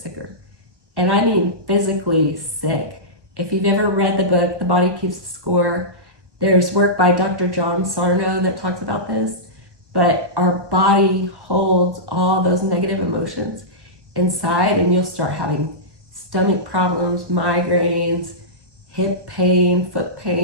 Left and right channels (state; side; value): late; left; 1.3 ms